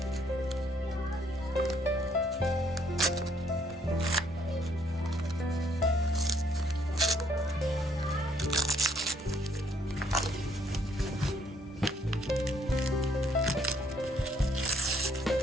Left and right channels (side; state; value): both; normal; correlation 0.68